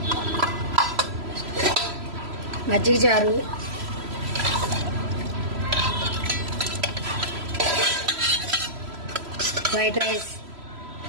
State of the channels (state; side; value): late; left; 3.0 ms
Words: మజ్జిగ చారు, వైట్ రైస్,